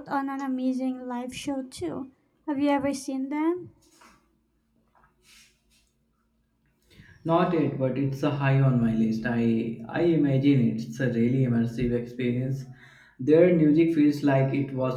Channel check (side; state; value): both; identical; correlation 1.00